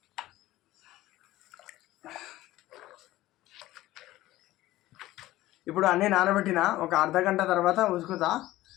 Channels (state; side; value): quieter; right; 16.3 dB